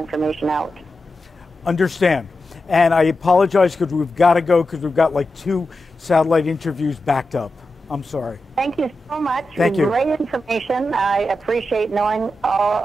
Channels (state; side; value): normal; both; correlation 0.90